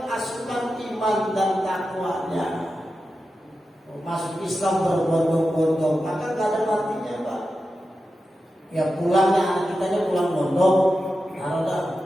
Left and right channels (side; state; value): both; normal; correlation 0.91